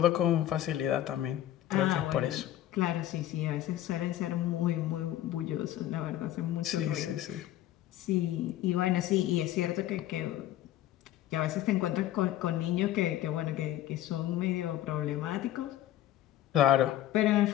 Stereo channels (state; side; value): quieter; right; 13.2 dB